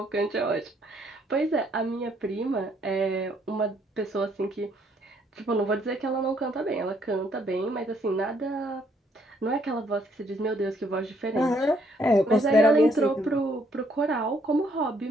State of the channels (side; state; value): both; normal; correlation 0.69